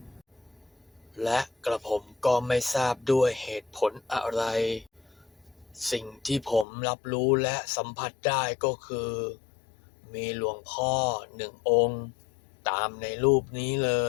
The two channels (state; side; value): drops out; right; at 6.7 s